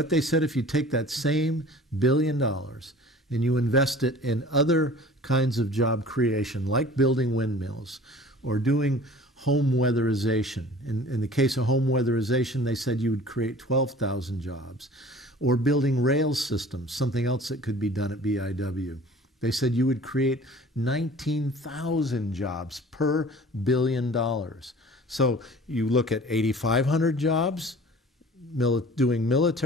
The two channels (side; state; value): both; normal; correlation 0.46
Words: they said if you take that same $1 billion and you invest it in other kinds of job creation, like building windmills or doing home weatherization. In the case of home weatherization, they said you would create 12,000 jobs. Or building rail systems, something else that could be done at BIW. They said you would create 19,000 jobs per $1 billion. So you look at 8,500 jobs doing